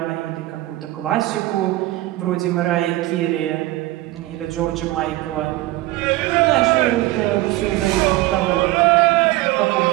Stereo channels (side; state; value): left; quieter; 17.5 dB